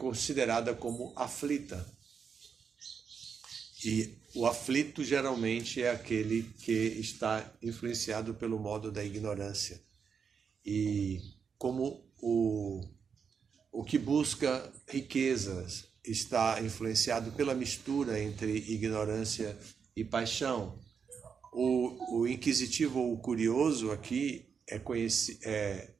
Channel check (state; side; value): quieter; left; 6.4 dB